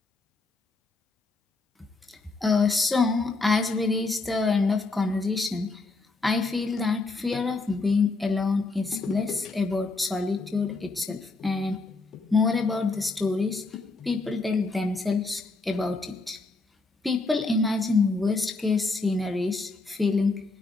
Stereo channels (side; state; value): right; quieter; 3.6 dB